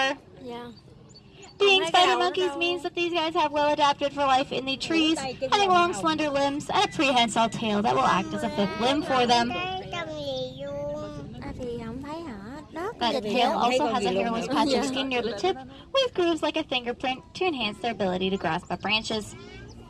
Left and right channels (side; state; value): both; identical; correlation 1.00